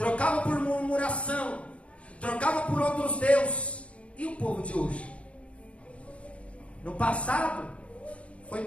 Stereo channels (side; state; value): right; late; 0.062 ms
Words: por murmuração, trocava por outros deuses. E o povo de hoje? No passado foi